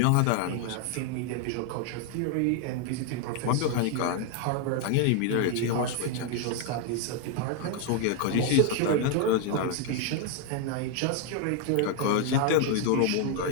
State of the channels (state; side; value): different; both; correlation 0.01